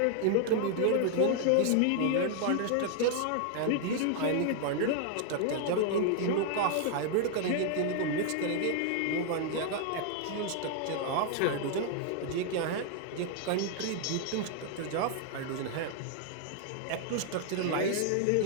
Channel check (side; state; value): both; different; correlation 0.00